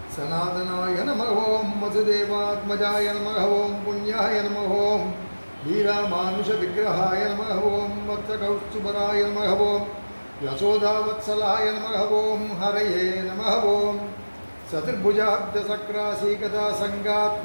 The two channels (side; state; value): both; inverted; correlation -1.00